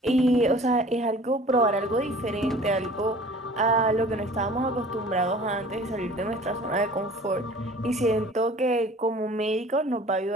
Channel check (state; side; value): normal; both; correlation 0.47